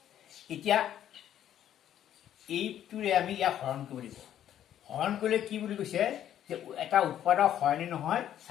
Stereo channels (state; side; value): quieter; right; 10.9 dB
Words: এতিয়া এইটোৰে আমি ইয়াক হৰণ কৰিব লাগিব। হৰণ কৰিলে কি বুলি কৈছে যে এটা উৎপাদক হয় নে নহয়